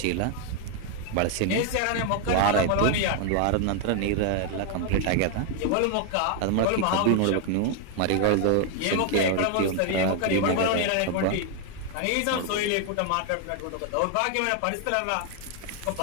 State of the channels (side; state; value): both; different; correlation 0.00